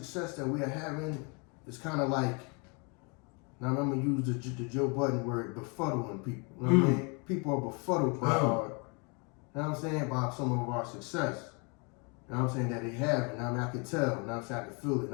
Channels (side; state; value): right; quieter; 32.8 dB